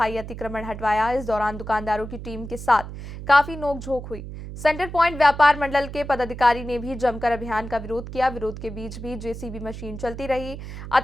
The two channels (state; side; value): noise; right; hum, 10 dB below the sound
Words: अतिक्रमण हटवाया। इस दौरान दुकानदारों की टीम के साथ काफी नोकझोंक हुई। सेंटर पॉइंट व्यापार मंडल के पदाधिकारी ने भी जमकर अभियान का विरोध किया। विरोध के बीच भी जेसीबी मशीन चलती रही,